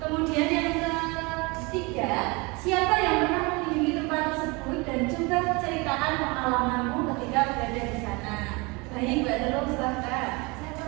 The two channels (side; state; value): left; quieter; 27.0 dB